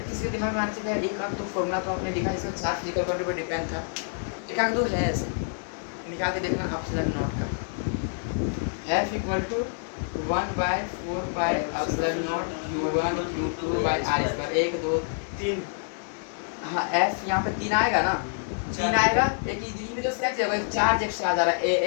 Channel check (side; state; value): right; silent; digital silence